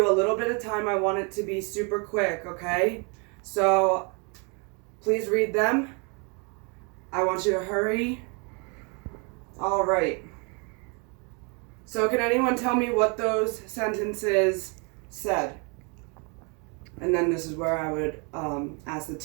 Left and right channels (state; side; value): quieter; left; 33.9 dB